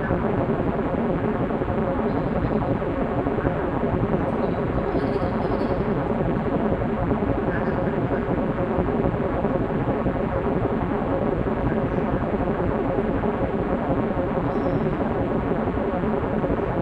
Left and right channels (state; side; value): identical; both; correlation 1.00